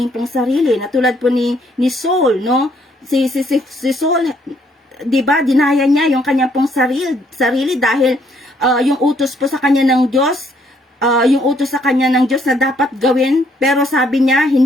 pong sarili. Na tulad po ni Saul, no? Si Saul, diba, dinaya niya yung kanyang pong sarili dahil yung utos po sa kanya ng Diyos, na dapat gawin, pero sabi niya,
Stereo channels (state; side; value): normal; both; correlation 0.68